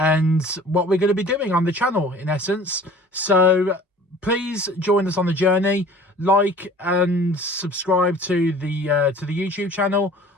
what we're going to be doing on the channel, in essence. So please join us on the journey. Like and subscribe to the YouTube channel.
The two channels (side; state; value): both; normal; correlation 0.47